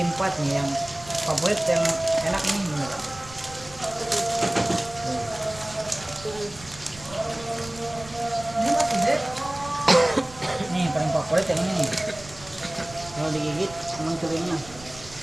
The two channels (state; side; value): noise; right; rumble, 18 dB below the sound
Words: Pat nih yang favorit, yang enak nih bener. Nih yang paling favorit yang ini nih. Kalau digigit emang curinya.